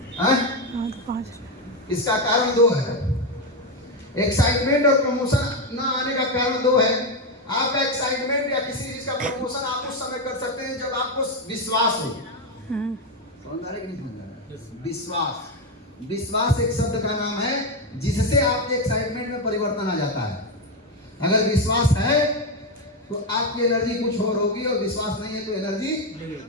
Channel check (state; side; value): normal; both; correlation 0.09